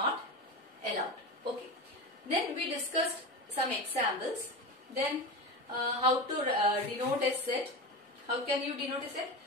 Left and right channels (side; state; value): both; normal; correlation 0.23